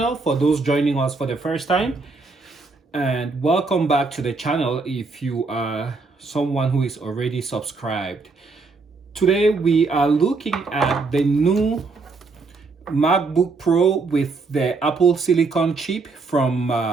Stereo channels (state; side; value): quieter; left; 4.0 dB